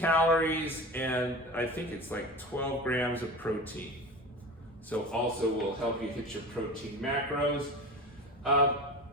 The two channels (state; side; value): normal; both; correlation 0.31